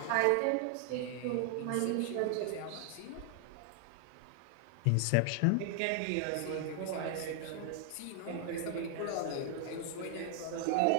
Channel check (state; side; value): different; both; correlation 0.00